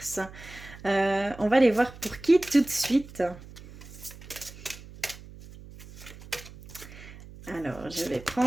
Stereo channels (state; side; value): noise; right; hum, 17 dB below the sound